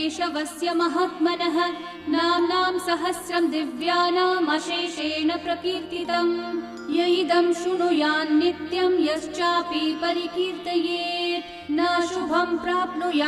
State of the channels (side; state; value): both; identical; correlation 1.00